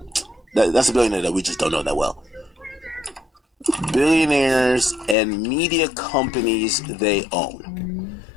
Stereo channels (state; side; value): drops out; right; at 5.2 s